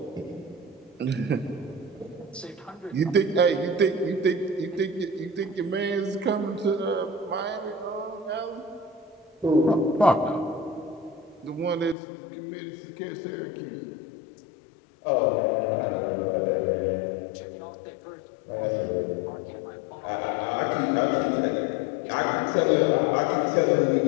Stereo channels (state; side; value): drops out; right; at 12.0 s